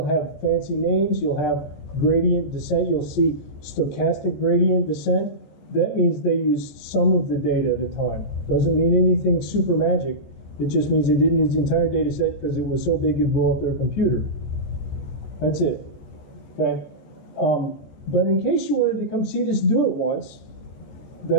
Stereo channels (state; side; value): late; right; 14 ms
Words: have fancy names, you'll have gradient descent, you'll see stochastic gradient descent. That means they used some of the data at a time. Doesn't mean anything super magic. It just means they didn't use the entire data set because it was so big it'd blow up their computer. That's it. Okay? But in case you wanted to come see this do it once,